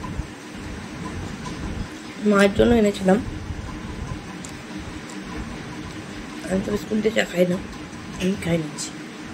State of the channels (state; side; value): identical; both; correlation 1.00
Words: মায়ের জন্য এনেছিলাম, আমি তো বিস্কুট দিয়ে চা খাই না, আমি খাই নিচ্ছি।